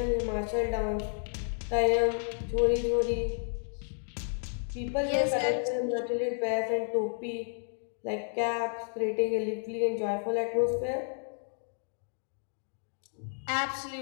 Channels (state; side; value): silent; right; digital silence